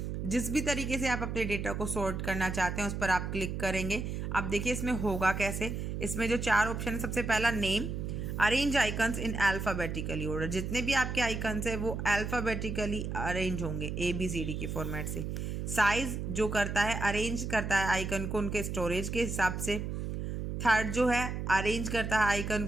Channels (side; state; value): right; noise; hum, 4 dB below the sound